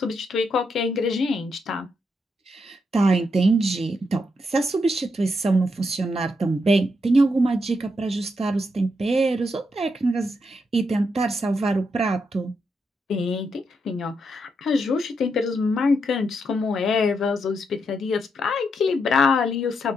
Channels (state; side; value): normal; both; correlation 0.81